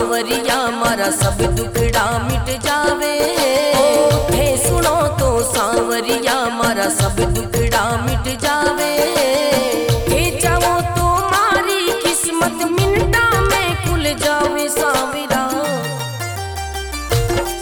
मारा सब दुखड़ा मिट जावे, थे सुनो तो सांवरिया मारा सब दुखड़ा मिट जावे। थे चाहो तो मारी किस्मत मिनटा में खुल जावे सांवरा।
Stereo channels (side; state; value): both; identical; correlation 1.00